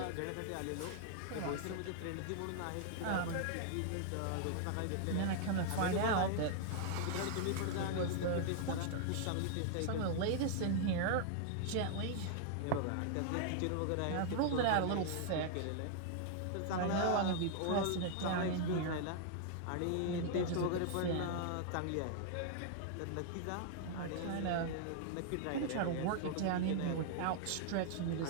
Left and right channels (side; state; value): both; different; correlation -0.01